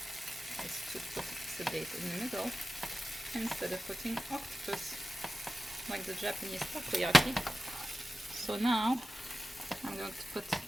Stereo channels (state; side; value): normal; both; correlation 0.93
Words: is to put the date in the middle instead of putting octopus like the Japanese takoyaki. So now I'm going to put